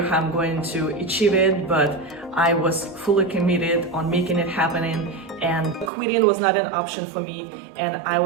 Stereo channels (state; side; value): drops out; left; at 5.9 s